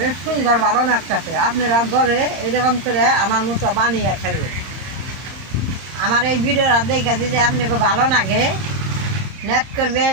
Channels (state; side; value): late; left; 31 ms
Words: সুন্দর ভালো লাগতেছে। আপনারা ঘরে এইরকম করে আমার মতো বানিয়ে খাইবে। আমার এই ভিডিওটা দেখে যদি আপনাকে ভালো লাগে, নেট